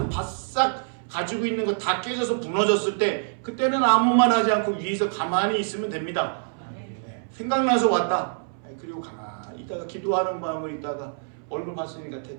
바싹 가지고 있는 거 다 깨져서 무너졌을 때 그때는 아무 말 하지 않고 위에서 가만히 있으면 됩니다. 네. 생각나서 왔다. 네. 그리고 가만히 있다가 기도하는 마음을 있다가 얼굴 봤으니까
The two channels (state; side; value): silent; left; 61 dB below the other